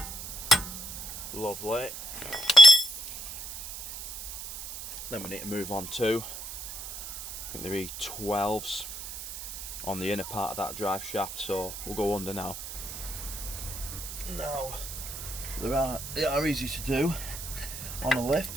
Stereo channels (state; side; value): noise; right; hiss, 9 dB below the sound